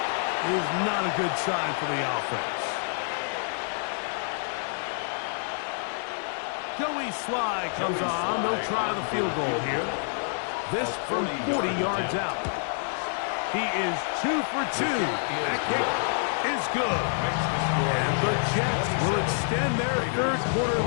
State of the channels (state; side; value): silent; right; digital silence